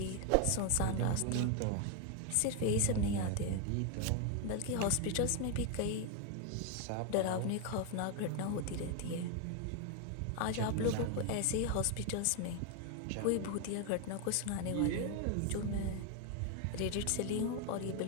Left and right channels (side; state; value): both; different; correlation 0.01